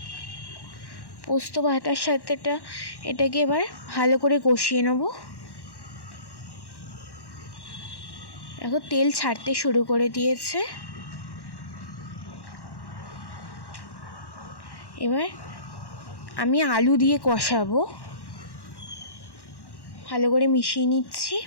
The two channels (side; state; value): right; late; 1.1 ms